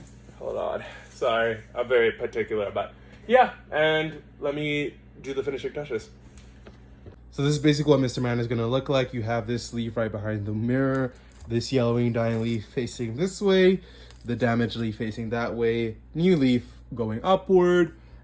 hold on, sorry, I'm very particular, but yeah, and let me do the finishing touches. So this is basically what Mr. Man is going to look like. You have this leaf right behind the mirror, this yellowing dying leaf facing this way, the damaged leaf facing that way, new leaf going upward,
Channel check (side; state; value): both; identical; correlation 1.00